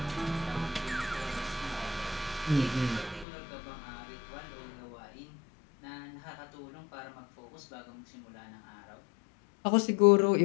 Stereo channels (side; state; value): right; drops out; at 3.2 s